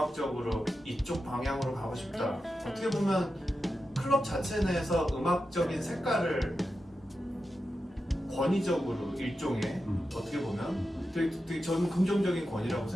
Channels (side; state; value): both; normal; correlation 0.90